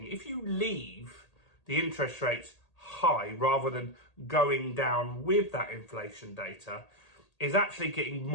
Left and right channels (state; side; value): late; right; 1.8 ms